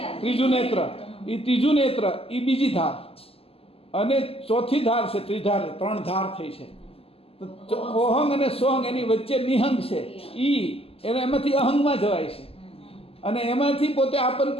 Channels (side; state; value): right; late; 0.28 ms